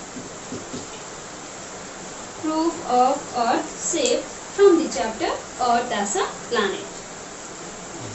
Proof of earth shape from the chapter Earth as a Planet.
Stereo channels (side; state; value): both; identical; correlation 1.00